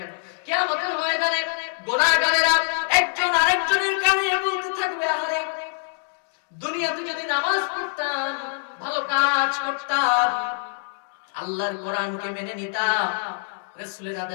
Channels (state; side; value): silent; right; digital silence